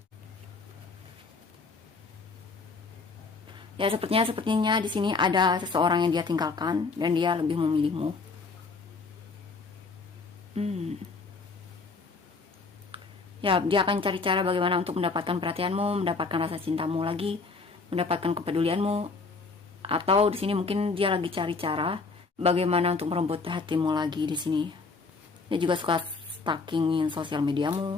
ya sepertinya di sini ada seseorang yang dia tinggalkan dan dia lebih memilihmu. Ya, dia akan cari cara bagaimana untuk mendapatkan perhatianmu, mendapatkan rasa cintamu lagi, mendapatkan kepedulianmu. Atau di sini mungkin dia lagi cari cara bagaimana untuk merebut hatimu lagi di sini. Dia juga suka stalkingin sosial mediamu.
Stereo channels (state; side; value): quieter; right; 4.2 dB